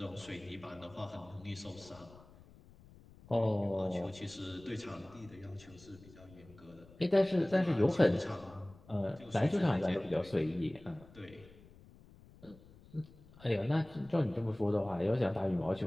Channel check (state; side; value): noise; left; rumble, 22 dB below the sound